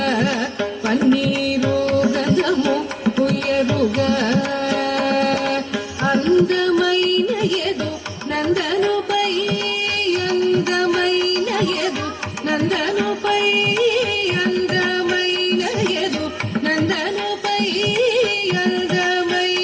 పన్నీరు గంధము పుయ్యరుగ అందమైన ఎదు నందనుపై అందమైన ఎదు నందనుపై అందమైన ఎదు నందనుపై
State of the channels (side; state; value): both; identical; correlation 1.00